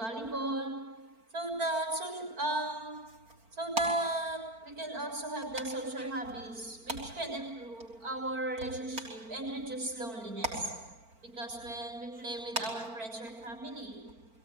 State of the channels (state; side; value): late; left; 4.4 ms